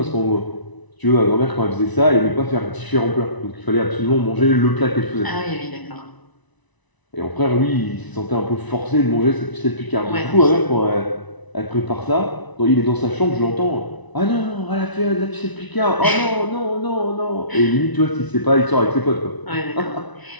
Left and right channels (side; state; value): right; late; 1.0 ms